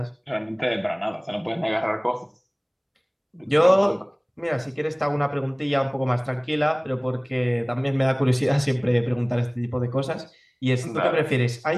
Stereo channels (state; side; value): identical; both; correlation 1.00